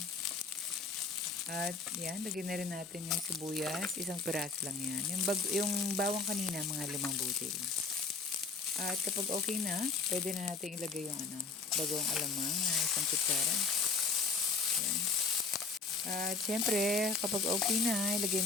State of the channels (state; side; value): quieter; right; 4.2 dB